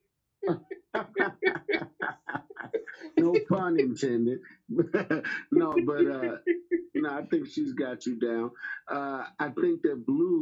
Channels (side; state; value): both; identical; correlation 1.00